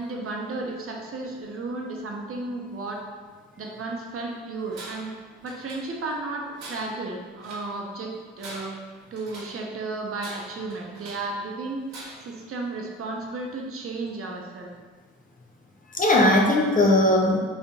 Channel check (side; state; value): both; normal; correlation 0.36